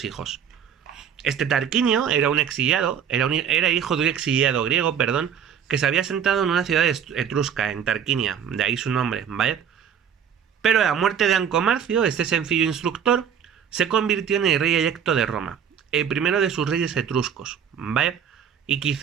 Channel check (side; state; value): left; quieter; 8.0 dB